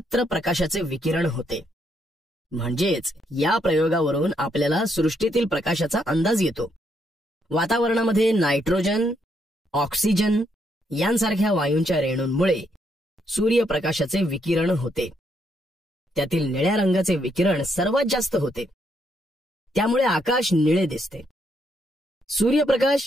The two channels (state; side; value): normal; both; correlation 0.75